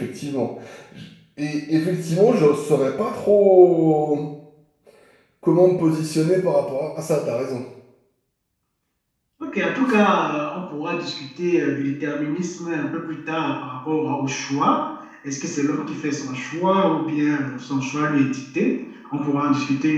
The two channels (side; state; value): both; identical; correlation 1.00